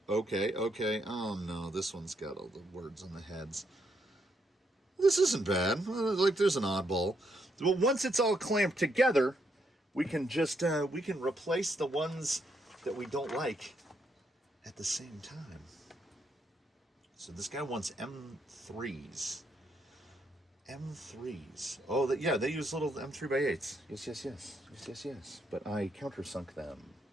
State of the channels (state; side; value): normal; both; correlation 0.76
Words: oh no, this one's got all the words on the heads. This isn't bad. Like, there's an oddball. But once it's all clamped together, we can just, we can replace the ones that we don't like at the same time. So this guy wants M3s. M3s. Oh, yeah, they use little M3x8s. Yes. But I countersunk them.